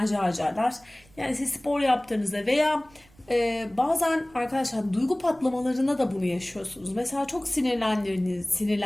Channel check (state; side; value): noise; right; rumble, 28 dB below the sound